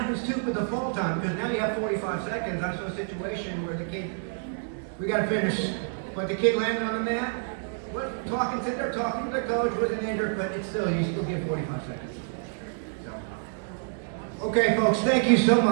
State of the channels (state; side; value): silent; left; digital silence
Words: too with the fall time, because now you have 45 seconds. I saw a situation where the kid, we got to finish, but the kid landed on the mat, sitting there talking to the coach, wasn't injured, but it's still, you still get 45 seconds. So. Okay, folks, thank you so